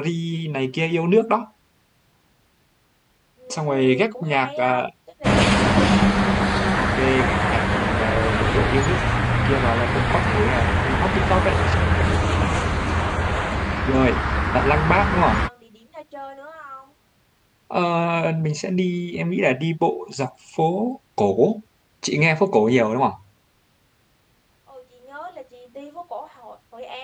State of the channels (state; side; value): identical; both; correlation 1.00